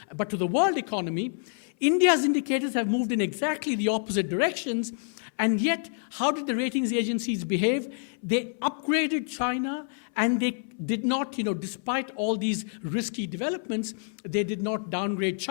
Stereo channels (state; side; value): silent; right; 60 dB below the other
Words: but to the world economy. India's indicators have moved in exactly the opposite directions, and yet, how did the ratings agencies behave? They upgraded China, and they did not, despite all these risky developments, they did not downgrade